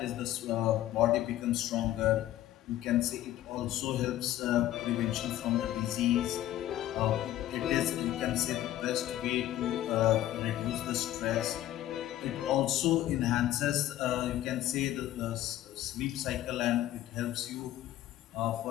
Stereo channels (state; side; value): quieter; right; 13.6 dB